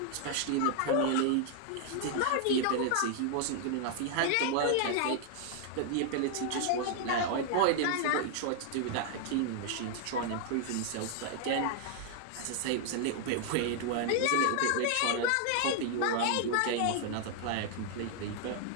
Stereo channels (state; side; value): different; both; correlation 0.00